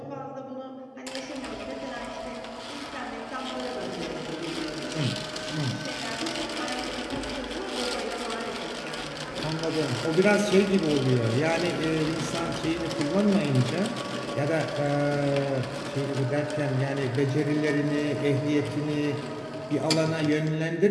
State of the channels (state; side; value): identical; both; correlation 1.00